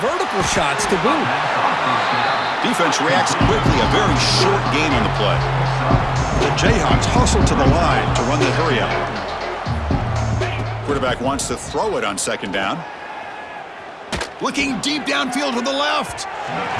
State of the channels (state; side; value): identical; both; correlation 1.00